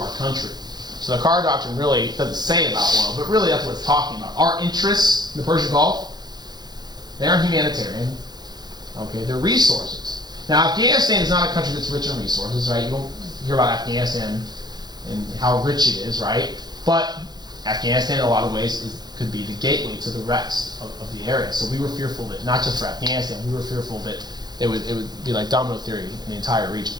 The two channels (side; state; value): left; late; 0.20 ms